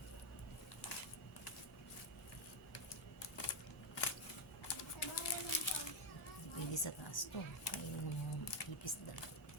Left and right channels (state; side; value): normal; both; correlation 0.05